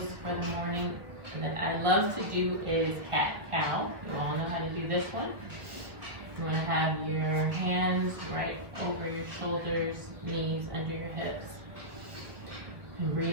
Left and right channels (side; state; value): left; late; 1.4 ms